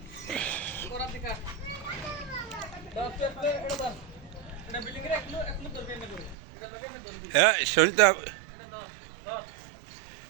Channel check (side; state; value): left; drops out; at 6.4 s